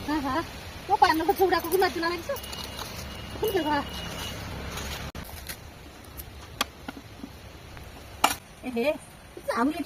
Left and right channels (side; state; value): both; identical; correlation 1.00